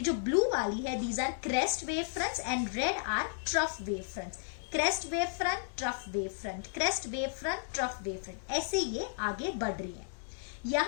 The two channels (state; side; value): silent; right; 55 dB below the other